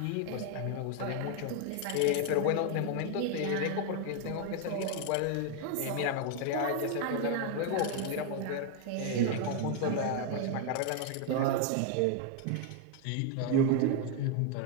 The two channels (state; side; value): different; both; correlation 0.01